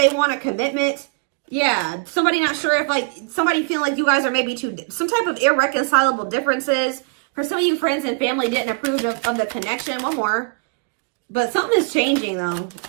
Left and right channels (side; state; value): left; quieter; 34.3 dB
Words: want a commitment. Yeah, somebody not sure if, like, somebody feeling like you guys are maybe some type of irreconcilable differences. For some of you, friends and family didn't approve of the connection. One more. But something is changing, though.